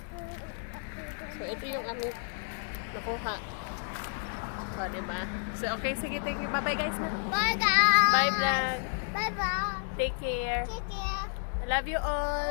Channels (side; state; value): right; silent; digital silence